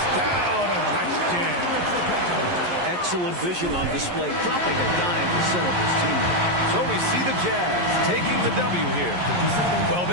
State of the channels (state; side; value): late; left; 11 ms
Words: down. A nice jam. Excellent vision on display, dropping a dime to set up his teammate. So we see the Jazz taking the W here. Well,